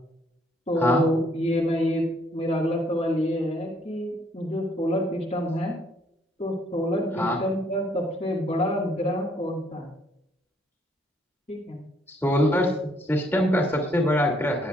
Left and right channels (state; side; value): normal; both; correlation 0.67